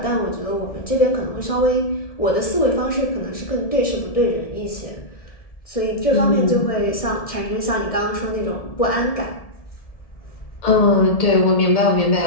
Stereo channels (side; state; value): right; late; 1.7 ms